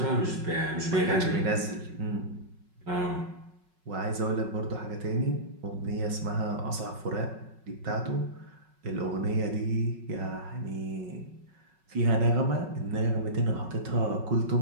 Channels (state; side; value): late; left; 5.4 ms